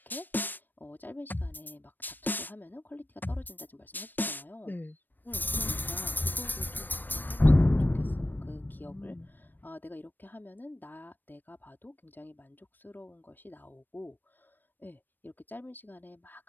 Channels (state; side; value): late; right; 0.092 ms